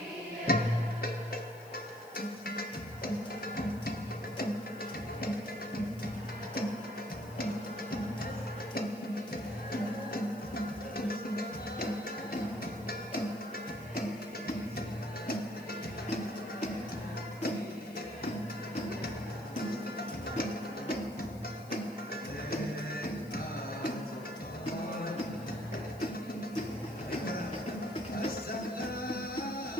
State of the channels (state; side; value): noise; left; hiss, 22 dB below the sound